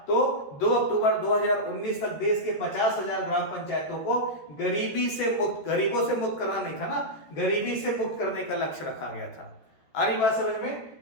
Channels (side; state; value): right; late; 14 ms